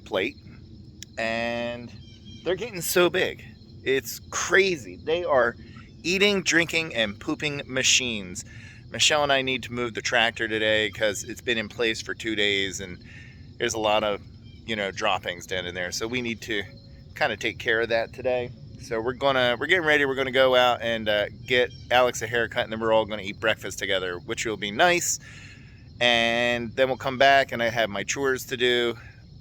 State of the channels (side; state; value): both; identical; correlation 1.00